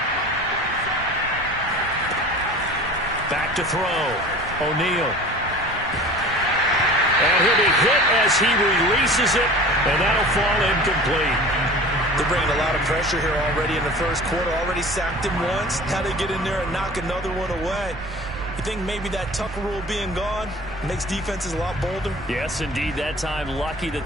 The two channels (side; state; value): right; noise; rumble, 15 dB below the sound